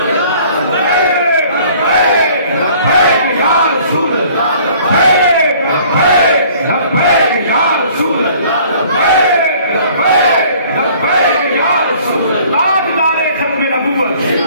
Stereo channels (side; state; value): both; inverted; correlation -0.54